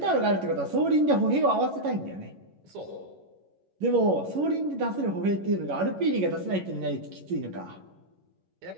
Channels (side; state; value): left; late; 11 ms